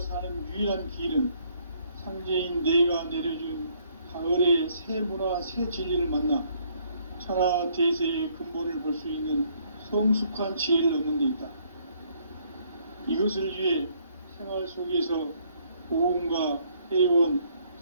사는 유일한 길은 상제인 내가 내려준 가을의 새 문화, 새 진리를 만나 천하 대세의 근본을 볼 수 있는 성숙한 지혜를 얻는 데 있다. 이것을 위해 생활 속에서 보험과 회원,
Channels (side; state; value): both; inverted; correlation -0.66